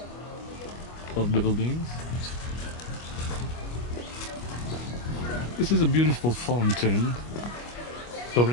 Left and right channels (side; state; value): right; late; 25 ms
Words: of buildings. This is a beautiful fountain